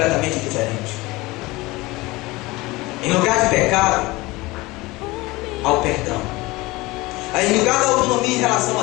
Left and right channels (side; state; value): right; quieter; 21.4 dB